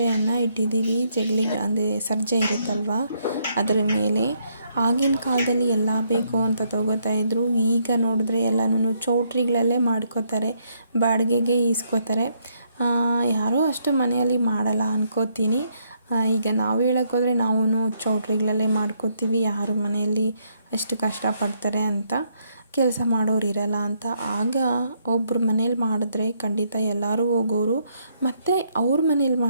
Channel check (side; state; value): both; inverted; correlation -0.73